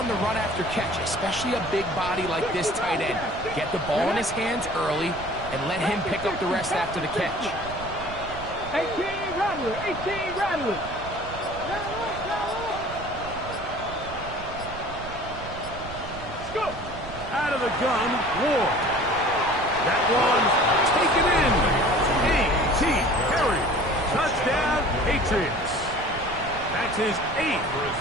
the run after catch, especially a big body like this tight end. Get the ball in his hands early and let him pick up the rest after the catch. 18 Rattler, 18 Rattler. Let's go. Out of the gun, Ward. That one taken in. A.T. Perry. Touchdown, Patriots. That's his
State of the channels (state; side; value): noise; right; rumble, 12 dB below the sound